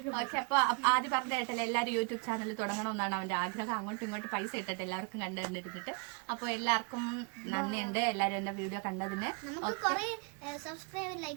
പക്ഷെ അപ്പൊ ആദ്യം പറഞ്ഞ കേട്ടല്ലേ എല്ലാവരും യൂട്യൂബ് ചാനൽ തുടങ്ങണമെന്നാണ് അവന്റെ ആഗ്രഹം. അങ്ങോട്ടും ഇങ്ങോട്ടും പൈസ ഇട്ടിട്ട് എല്ലാവർക്കും കണ്ടിരുന്നിട്ട്. അപ്പൊ എല്ലാവർക്കും നന്ദിയുണ്ട്, എല്ലാരും എന്റെ വീഡിയോ കണ്ടതിന്. നമുക്ക് കുറെ സബ്സ്ക്രൈബ്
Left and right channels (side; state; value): left; quieter; 34.9 dB